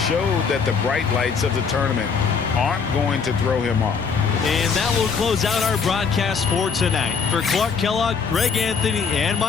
showed that the bright lights of the tournament aren't going to throw him off. And that will close out our broadcast for tonight. For Clark Kellogg, Greg Anthony, and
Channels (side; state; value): right; quieter; 5.7 dB